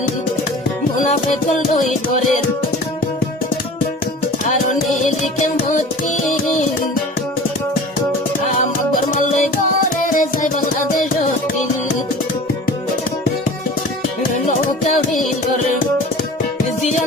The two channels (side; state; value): both; normal; correlation 0.40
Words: মুনাফেক লই করে আর নীলিকে মতি আমার মাল্লাই করে যাই বাংলাদেশ দিন নৌকা ভিতর